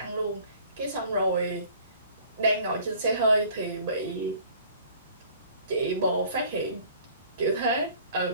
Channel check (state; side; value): inverted; both; correlation -0.52